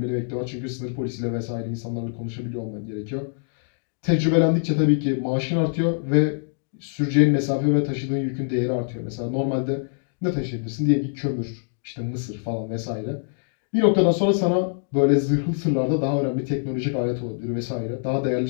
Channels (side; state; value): right; silent; digital silence